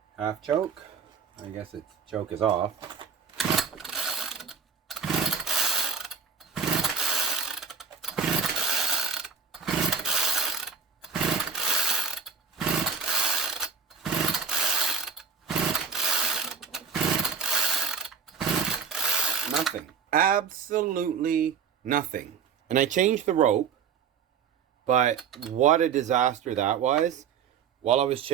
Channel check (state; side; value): quieter; left; 5.9 dB